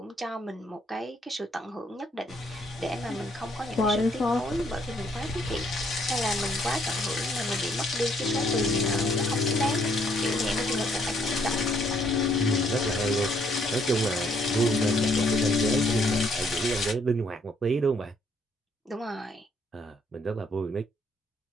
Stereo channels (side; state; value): both; normal; correlation 0.68